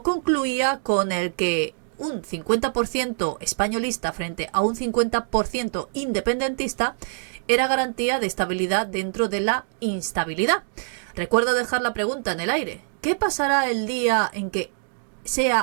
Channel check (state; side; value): silent; left; digital silence